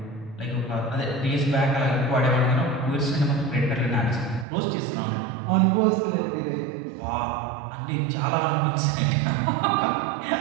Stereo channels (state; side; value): drops out; left; at 4.5 s